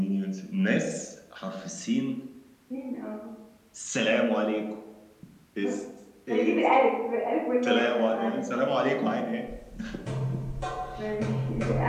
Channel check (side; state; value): both; identical; correlation 1.00